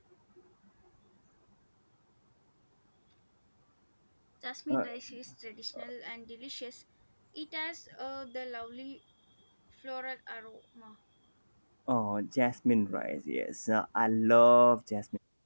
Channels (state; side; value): inverted; both; correlation -1.00